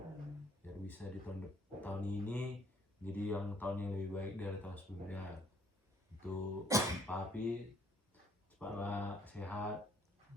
biar bisa di tahun ini jadi yang tahun yang lebih baik dari tahun sebelumnya. Untuk Papi cepatlah sehat,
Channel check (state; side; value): normal; both; correlation 0.64